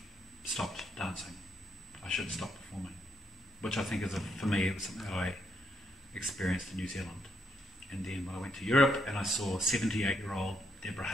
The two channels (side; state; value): both; normal; correlation 0.76